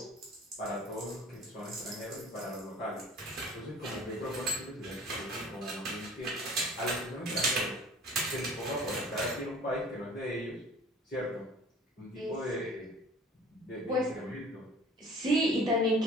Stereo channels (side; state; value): both; normal; correlation 0.46